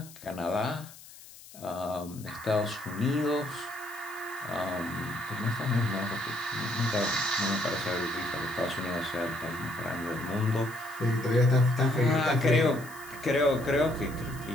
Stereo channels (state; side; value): noise; left; hiss, 19 dB below the sound